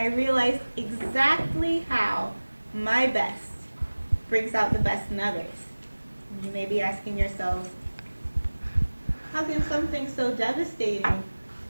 realized exactly how my best brings out the best in others. You may be asking yourselves, how can something so devastating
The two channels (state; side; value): inverted; both; correlation -1.00